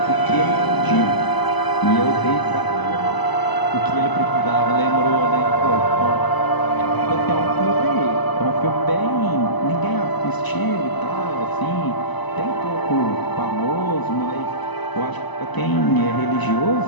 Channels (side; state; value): right; late; 1.0 ms